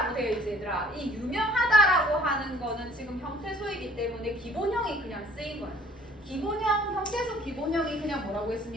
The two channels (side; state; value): both; normal; correlation 0.56